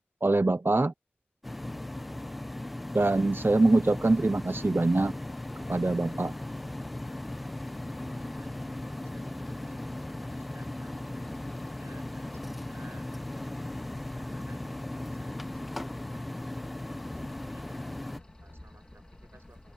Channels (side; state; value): both; normal; correlation 0.96